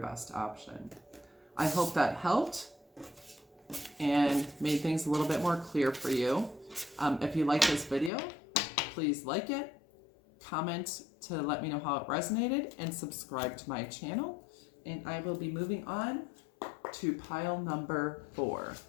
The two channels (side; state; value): right; drops out; at 8.1 s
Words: option. I hope that helped and made things a little bit more clear for you. If you like this video, please like it, comment to let me know how it resonated, and subscribe to my channel. And I will be moving on to pile number 4.